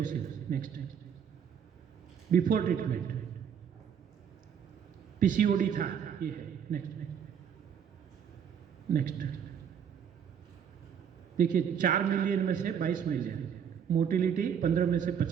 Next, before treatment PCOD था, ये है। Next next देखिए 4 million में से 22 मिलियन, मोटिलिटी 15 में से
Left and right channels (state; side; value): quieter; left; 7.9 dB